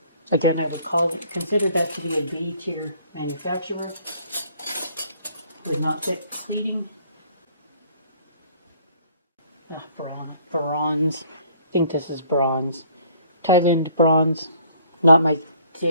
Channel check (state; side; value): inverted; both; correlation -0.59